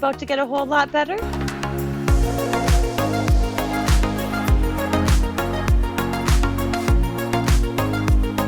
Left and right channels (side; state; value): both; identical; correlation 1.00